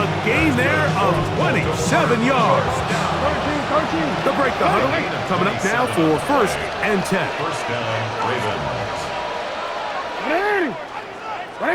gain there of 27 yards. They'll break the huddle. Coming up now for 1st and 10. First down, Ravens.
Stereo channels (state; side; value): identical; both; correlation 1.00